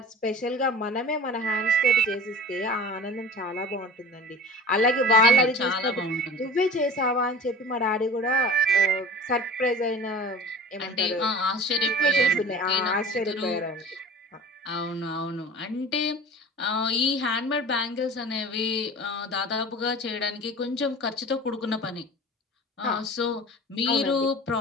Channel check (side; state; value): both; normal; correlation 0.39